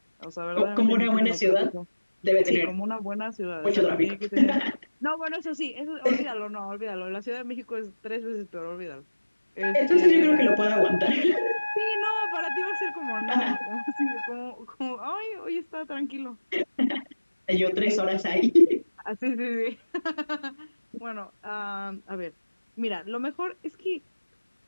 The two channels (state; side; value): inverted; both; correlation -1.00